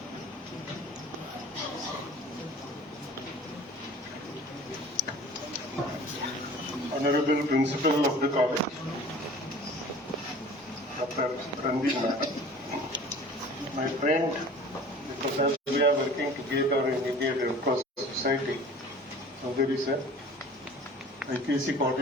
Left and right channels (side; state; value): both; normal; correlation 0.45